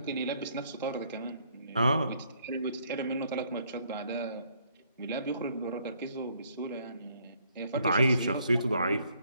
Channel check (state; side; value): inverted; both; correlation -0.67